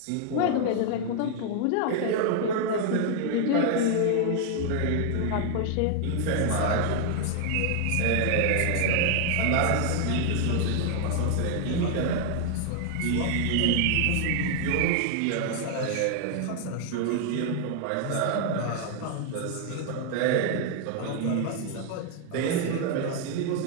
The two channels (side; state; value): both; different; correlation 0.00